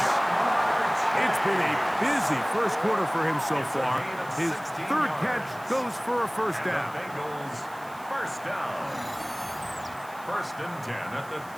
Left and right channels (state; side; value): noise; right; hiss, 22 dB below the sound